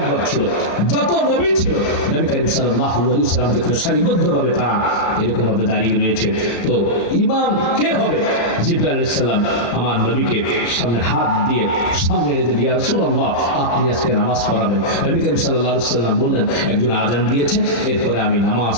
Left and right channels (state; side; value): late; right; 35 ms